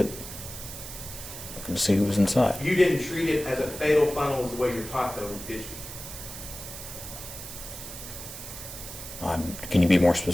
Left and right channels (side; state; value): right; noise; hiss, 11 dB below the sound